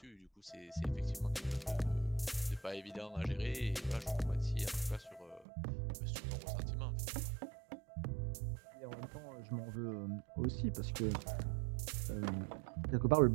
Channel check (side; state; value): left; drops out; at 5.5 s